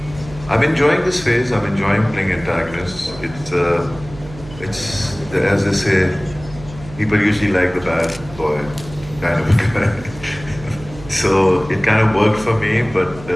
I'm enjoying this phase. I'm enjoying playing antagonists. It's as they say, people usually like the bad boy kind of guy. So it kind of worked for me, but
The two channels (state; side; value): noise; right; hum, 17 dB below the sound